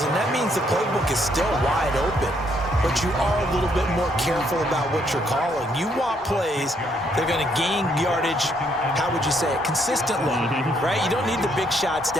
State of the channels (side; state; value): both; normal; correlation 0.71